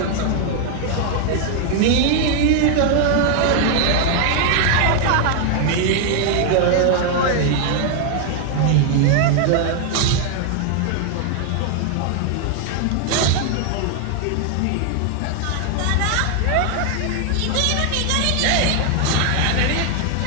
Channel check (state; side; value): different; both; correlation 0.00